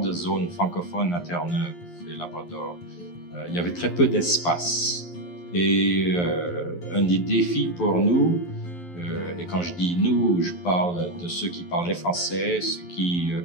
zone francophone à Terre-Neuve et Labrador. Il y avait très peu d'espace. Et un des défis pour nous, et quand je dis nous, je parle de ceux qui parlaient français, ceux qui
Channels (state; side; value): late; right; 11 ms